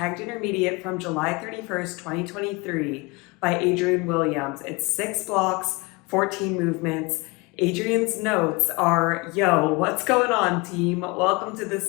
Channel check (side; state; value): right; quieter; 26.0 dB